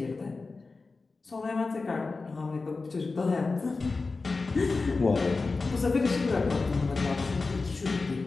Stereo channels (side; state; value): right; quieter; 3.9 dB